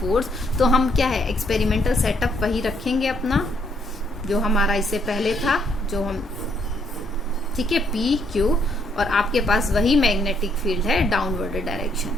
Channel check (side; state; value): both; normal; correlation 0.71